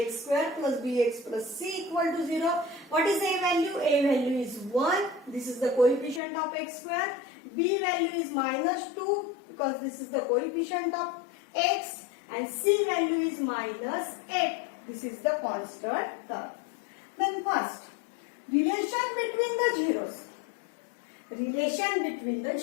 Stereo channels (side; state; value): right; drops out; at 6.2 s